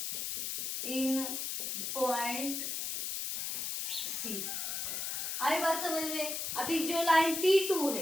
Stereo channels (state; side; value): noise; left; hiss, 2 dB below the sound